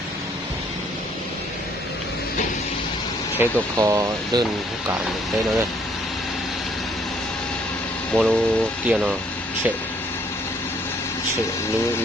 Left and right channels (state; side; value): normal; both; correlation 0.65